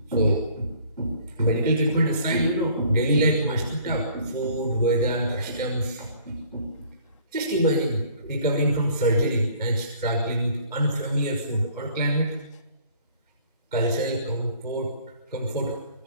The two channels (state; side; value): inverted; both; correlation -0.55